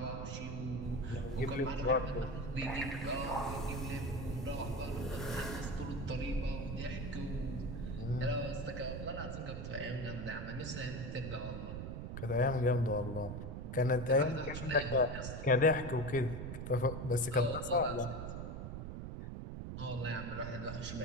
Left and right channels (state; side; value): noise; right; rumble, 6 dB below the sound